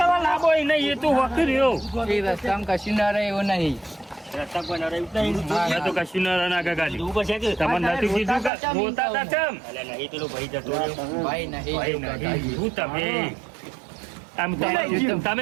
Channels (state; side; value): drops out; left; at 8.5 s